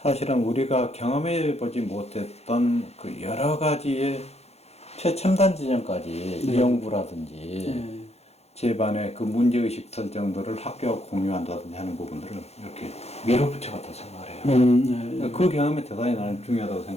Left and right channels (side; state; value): right; late; 0.31 ms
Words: 사실은 우리가 경험해 보지 못했던 그 여러 가지의 최첨단 지점까지 연구라든지 제반의 그 문제의식 설정들을 학교와 공유한다든지 하는 부분들을 이렇게 밀어붙여갔다고 생각을 해요. 그 경험이 대단히 나는 중요하다고